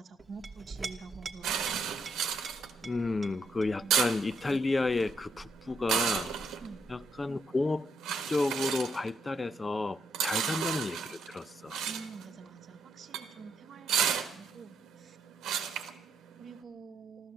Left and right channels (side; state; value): both; normal; correlation 0.76